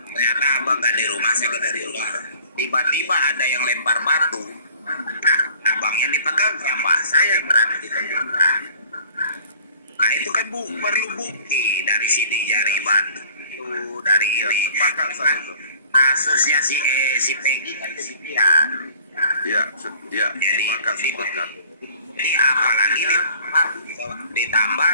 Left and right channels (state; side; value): inverted; both; correlation -0.51